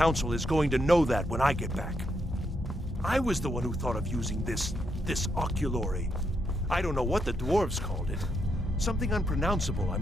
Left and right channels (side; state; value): both; normal; correlation 0.80